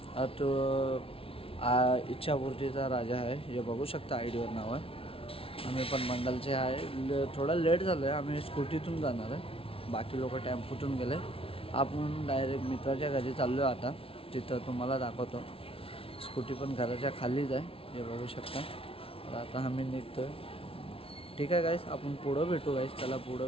तो इच्छापूर्तीचा राजा आहे. हे बघू शकता आयडीवर नाव आहे. आम्ही पण मंडलचे आहे. थोडा लेट झालं आहे. आम्ही स्कूटीतून जाणार आहे. बाकी लोक टेम्पोतून गेले. आपण डायरेक्ट मित्राच्या घरी चाललो आहे. आता तिथं तुम्हाला दाखवतो. स्कूटी पण घराच्या खालीच आहे. हे बघू शकता. तर आता आम्ही निघतो आहे. ठीक आहे गाईस, आपण पुढं भेटू गाईस. चला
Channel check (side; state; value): right; late; 0.26 ms